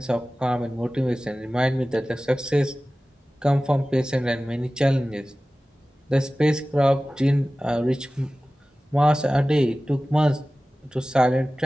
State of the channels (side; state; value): both; normal; correlation 0.97